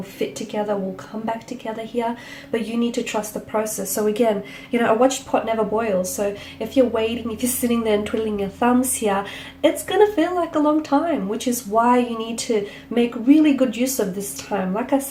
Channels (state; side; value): identical; both; correlation 1.00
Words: fit together, will come back together here. But you need to trust the process. So again, a watched pot never boils. So if you're waiting, if you're sitting there and twiddling your thumbs here, it's going to feel like a long time, which is why you need to make really good use of this time. Like I